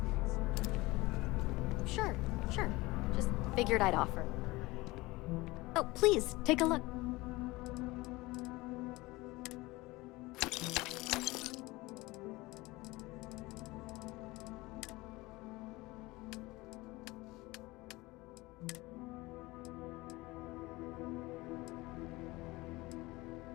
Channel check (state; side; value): quieter; right; 21.2 dB